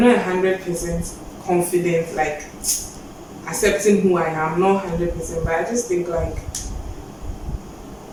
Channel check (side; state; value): both; identical; correlation 1.00